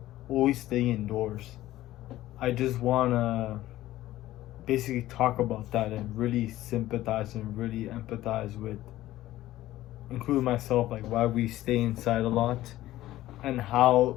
always staying indoors. I just want to basically talk about that and really sympathize and really empathize with, including myself, like why we stay inside a lot and how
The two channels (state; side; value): quieter; right; 15.2 dB